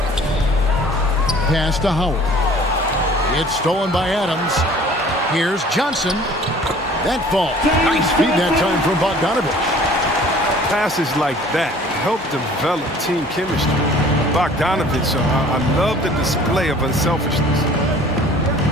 Pass to Howard. It's stolen by Adams. Here's Johnson. That fall. Nice feed that time from Bogdanovich. Passes like that help develop team chemistry. Bogdanovich, I love the display of unselfishness.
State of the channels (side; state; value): both; normal; correlation 0.50